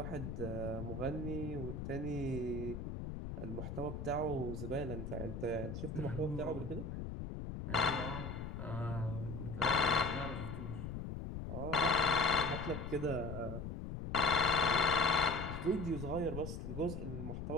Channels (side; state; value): left; noise; rumble, 6 dB below the sound